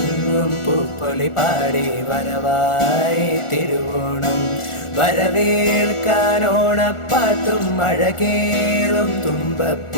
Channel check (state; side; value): late; right; 1.4 ms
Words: പൂപ്പൊലി പാടി വരവായി തിരുവോണം വരവേൽക്കാനോണപ്പാട്ടും അഴകേറും